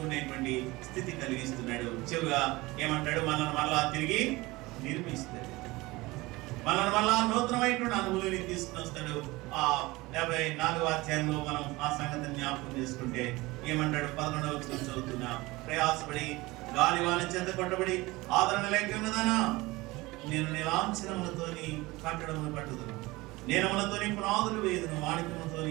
స్థితి కలిగిస్తున్నాడు. చివరిగా ఏమంటాడు? మనల్ని మళ్ళా తిరిగి నిర్మిస్తాడు, మనల్ని మళ్ళా నూతనమైనటువంటి అనుభూతిని తీసుకుని వస్తాడు. 54వ అధ్యాయంలో మనం ఆ సంగతిని జ్ఞాపకం చేసుకుంటే ఏమంటాడు? 11వ వచనం చదువుతున్నా. ప్రయాసపడి గాలివాన చేత కొట్టబడి ఆదరణ లేక ఉన్నదానా, నేను నీలాంఛనములతోని కట్టడమును కట్టుదును, నీలములతోని పునాదులు వేయుదును,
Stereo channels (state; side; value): quieter; left; 21.3 dB